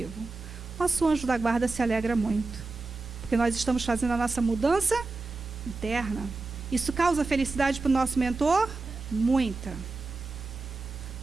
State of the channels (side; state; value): left; quieter; 3.6 dB